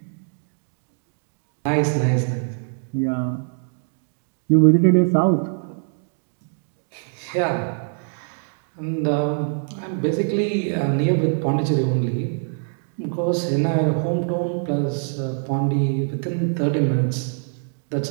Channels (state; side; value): silent; left; 61 dB below the other